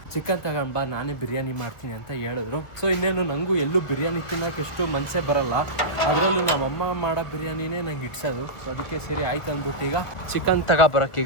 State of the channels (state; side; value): late; right; 1.4 ms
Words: ಚಿಕನ್ ತಗೊಂಡು ಬಾ, ನಾನೇ ಬಿರಿಯಾನಿ ಮಾಡ್ತೀನಿ ಅಂತ ಹೇಳಿದ್ರು. ಸೊ ಇನ್ನೇನು ನನಗೂ ಎಲ್ಲೂ ಬಿರಿಯಾನಿ ತಿನ್ನೋಕೆ ಎಷ್ಟು ಮನಸ್ಸೇ ಬರಲ್ಲ, ಅದರಲ್ಲೂ ನಮ್ಮಮ್ಮ ಮಾಡೋ ಬಿರಿಯಾನಿನೇ ನಂಗೆ ಇಡ್ಸೋದು. ಸೊ ಅದಕ್ಕೆ ಸರಿ ಆಯ್ತು ಅಂದ್ಬಿಟ್ಟು ಈಗ ಚಿಕನ್